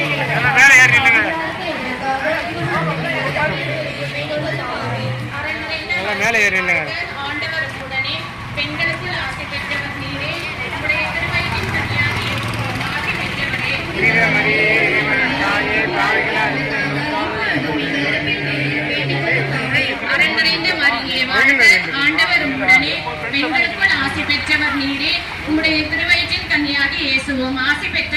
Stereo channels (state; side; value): identical; both; correlation 1.00